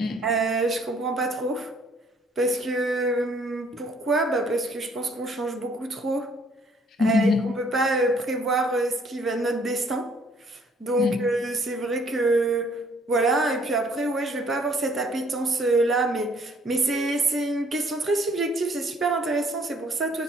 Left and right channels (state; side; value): normal; both; correlation 0.62